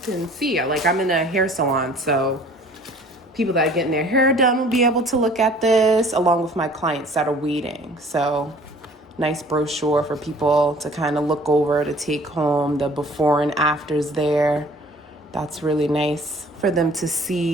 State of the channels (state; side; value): normal; both; correlation 0.52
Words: can see. Like, I'm in a hair salon, so people that are getting their hair done will be able to look at this along with my clients that are waiting. So nice brochure for people to kind of look over, to take home, the before and afters there. That's really nice for them to